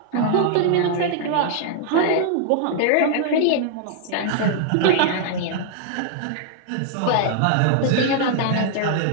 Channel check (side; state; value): both; different; correlation -0.01